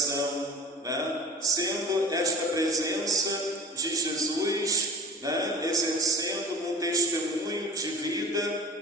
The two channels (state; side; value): normal; both; correlation 0.39